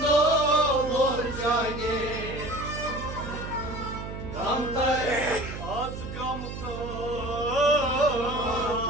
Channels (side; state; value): right; noise; hum, 8 dB below the sound